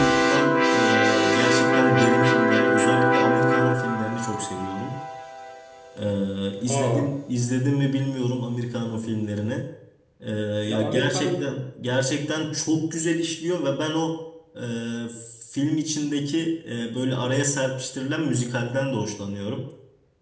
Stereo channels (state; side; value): identical; both; correlation 1.00